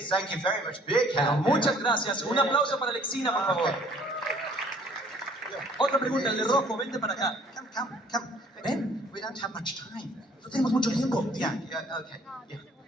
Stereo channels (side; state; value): both; normal; correlation 0.57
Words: thank you very much. Big Pero hand. muchas gracias. Un aplauso para Alexina, por favor. Otra pregunta, el de rojo, vente para acá. Come. Ven. We don't have much time. No tenemos mucho tiempo. Yeah, okay. Yeah,